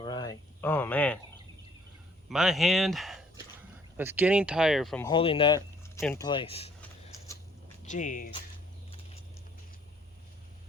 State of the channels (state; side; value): normal; both; correlation 0.62